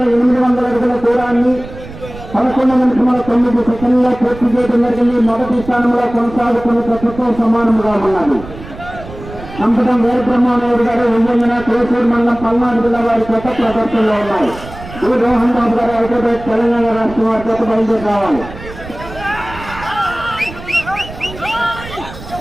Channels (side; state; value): right; noise; rumble, 14 dB below the sound